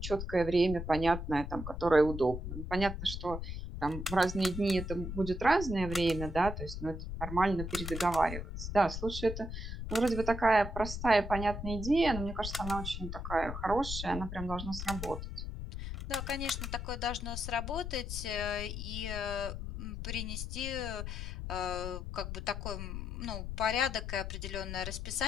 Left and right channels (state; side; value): noise; left; rumble, 6 dB below the sound